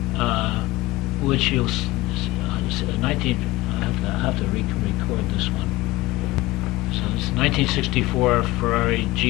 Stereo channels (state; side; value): quieter; right; 19.8 dB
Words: which you'll 19. I have to record this one. So it's 1964 Ferrari